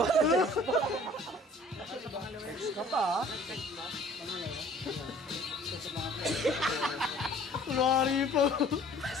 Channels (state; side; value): normal; both; correlation 0.51